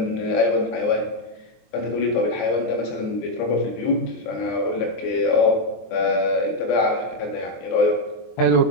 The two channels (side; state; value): right; late; 23 ms